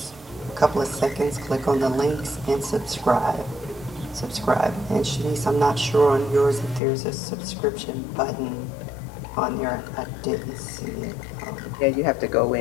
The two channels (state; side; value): drops out; right; at 6.8 s